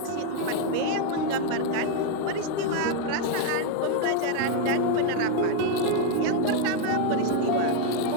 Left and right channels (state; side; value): different; both; correlation 0.00